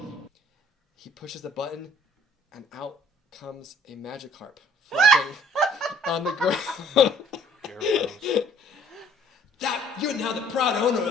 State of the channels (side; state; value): both; normal; correlation 0.58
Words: He pushes the button, and out comes a Magikarp flopping on the ground. That you're now the proud owner